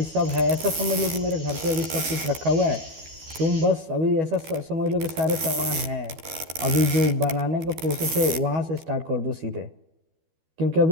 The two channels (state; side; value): late; left; 12 ms